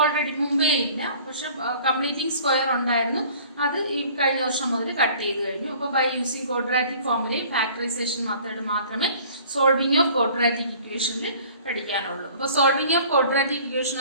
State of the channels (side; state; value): both; inverted; correlation -0.50